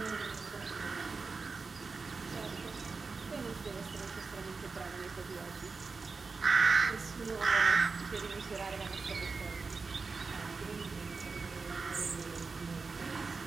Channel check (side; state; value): left; quieter; 4.5 dB